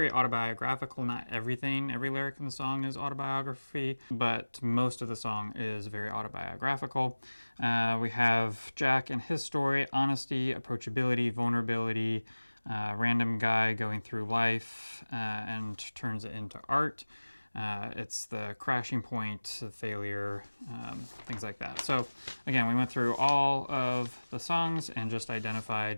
autobiographical. Not everything, every lyric in the song is autobiography, but most of the song is very autobiographical. We have Jack and his story, honesty, approachability, vulnerability, random guy going through life and turns it into art. It's the crashing point, the failure, things like that. So again, we went through all of the songs and just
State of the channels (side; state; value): both; inverted; correlation -1.00